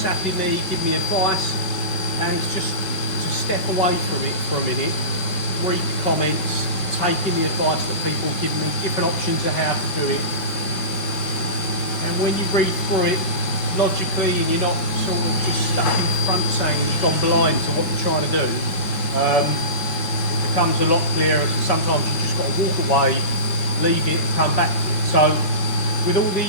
me, giving me advice, and it's just to step away from it for a minute, read the comments, taking the advice that people give me, different options of how to do it. And when you read through it logically and you're not sort of just stuck in front saying you've gone blind to what you're trying to do, it becomes a lot clearer. Sometimes you just got to walk away, leave it and come back to it. So with all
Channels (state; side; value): late; right; 5.2 ms